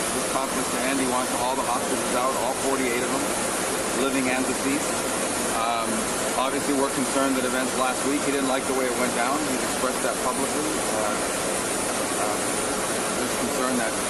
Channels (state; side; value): identical; both; correlation 1.00